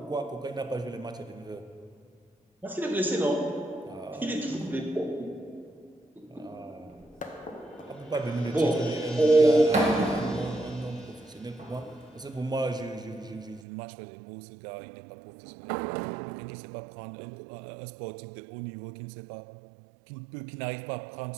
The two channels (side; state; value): left; drops out; at 13.6 s